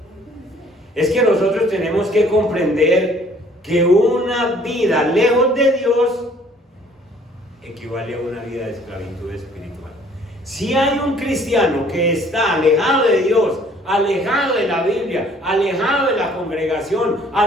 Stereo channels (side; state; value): both; normal; correlation 0.57